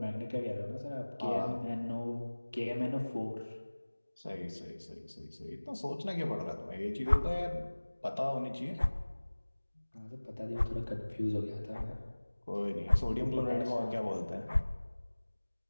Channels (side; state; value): both; inverted; correlation -1.00